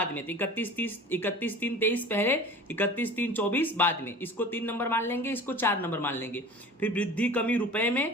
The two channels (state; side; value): normal; both; correlation 0.39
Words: में। तो 31/3/23 पहले, 31/3/24 बाद में। इसको 3 नंबर मान लेंगे, इसको 4 नंबर मान लेंगे। फिर वृद्धि कमी रुपए